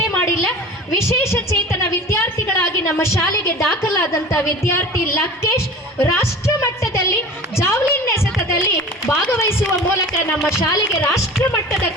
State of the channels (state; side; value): normal; both; correlation 0.38